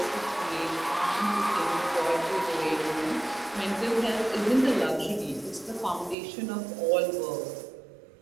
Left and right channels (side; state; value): left; drops out; at 6.2 s